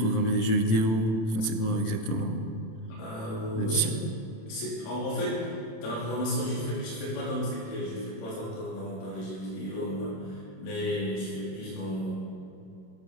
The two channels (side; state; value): right; late; 27 ms